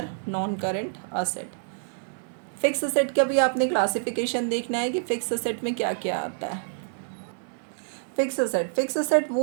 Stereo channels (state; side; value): silent; left; 60 dB below the other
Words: non current asset. Fix asset का भी आपने क्लासिफिकेशन देखना है कि फिक्स असेट में क्या क्या आता है। फिक्स असेट